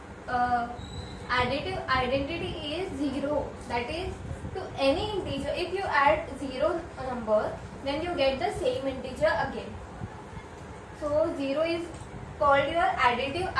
additive identity is 0. That is, to any integer, if you add 0 number, then you get the same integer again. So 0 is called your additive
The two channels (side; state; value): both; identical; correlation 1.00